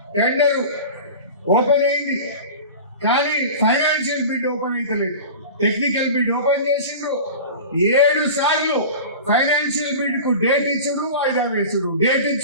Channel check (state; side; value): inverted; both; correlation -0.34